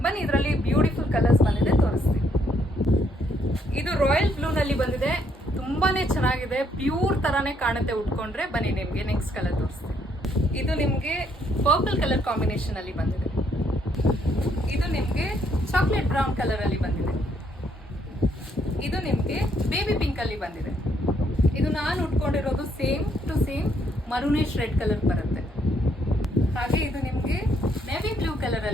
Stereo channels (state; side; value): normal; both; correlation 0.71